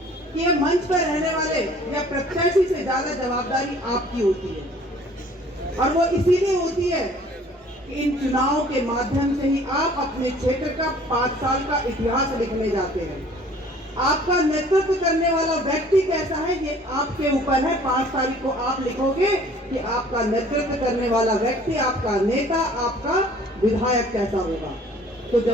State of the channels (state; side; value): normal; both; correlation 0.53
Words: कि ये मंच पर रहने वाले या प्रत्याशी से ज्यादा जवाबदारी आपकी होती है। और वो इसीलिए होती है कि इन चुनाव के माध्यम से ही आप अपने क्षेत्र का 5 साल का इतिहास लिखने जाते हैं। आपका नेतृत्व करने वाला व्यक्ति कैसा है ये आपके ऊपर है। 5 तारीख को आप लिखोगे कि आपका नेतृत्व करने वाला व्यक्ति, आपका नेता, आपका विधायक कैसा होगा। तो